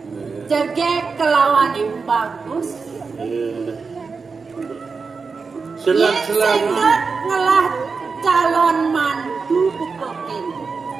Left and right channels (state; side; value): quieter; left; 4.8 dB